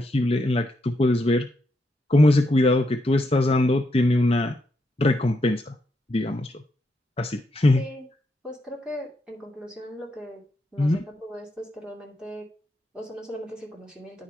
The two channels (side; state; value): both; normal; correlation 0.80